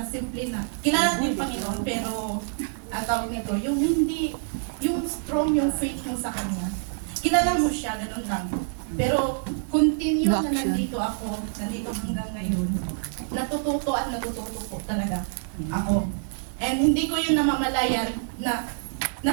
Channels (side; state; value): left; silent; digital silence